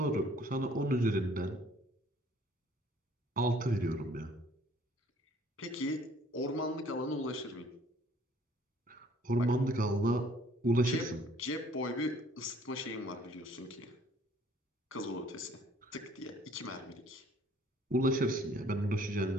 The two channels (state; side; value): normal; both; correlation 0.58